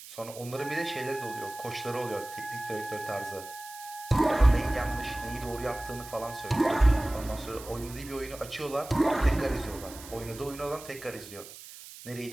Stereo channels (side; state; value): right; noise; hiss, 15 dB below the sound